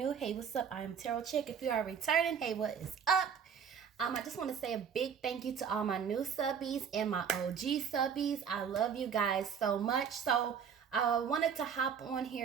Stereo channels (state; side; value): quieter; left; 7.3 dB